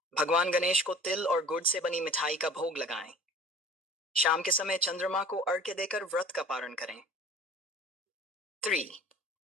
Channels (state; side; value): normal; both; correlation 0.45